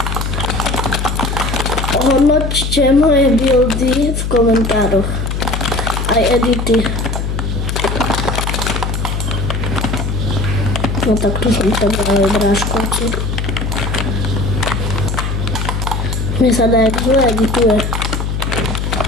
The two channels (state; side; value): noise; left; hum, 2 dB below the sound